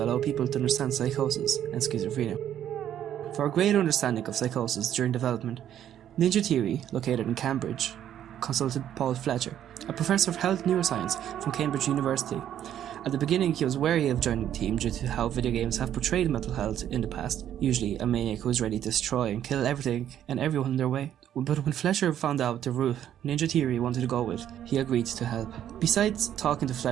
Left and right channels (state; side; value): quieter; left; 10.6 dB